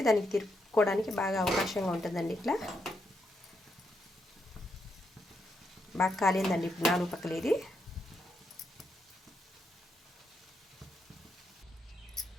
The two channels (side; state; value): both; normal; correlation 0.80